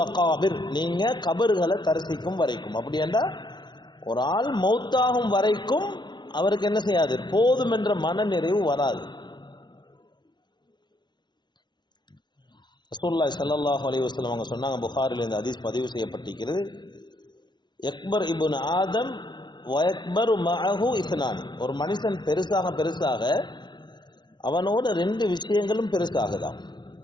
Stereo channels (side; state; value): right; late; 0.21 ms